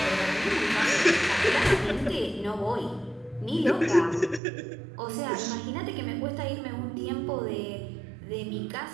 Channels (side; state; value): left; drops out; at 4.4 s